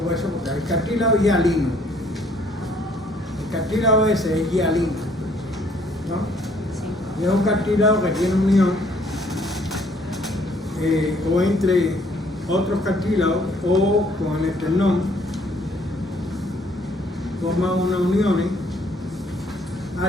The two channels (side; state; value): both; normal; correlation 0.63